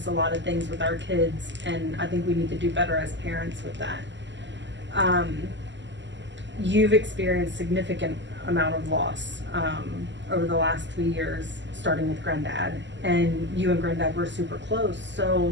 a lot of things with our kids, and I think we need to do better as parents with that. You've experienced significant amount of loss over the last 3 years, starting with Granddad, and you and Granddad were super close.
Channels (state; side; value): late; left; 0.53 ms